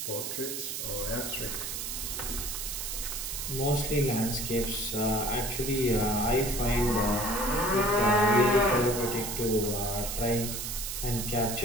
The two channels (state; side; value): noise; right; hiss, 4 dB below the sound